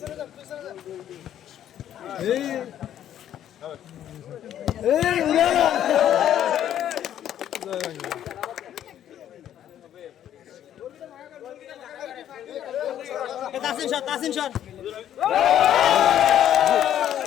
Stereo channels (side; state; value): right; quieter; 10.8 dB